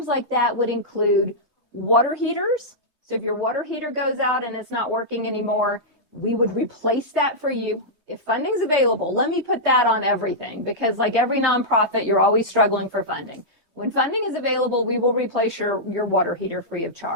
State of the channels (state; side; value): late; right; 3.2 ms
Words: like that would include water heaters. So if your water heater goes out and it's not working anymore, we would replace that for you. If funding's available, let me put that on everything, because like every nonprofit, you're always struggling for funding. When funding is available, we will replace your water heater free of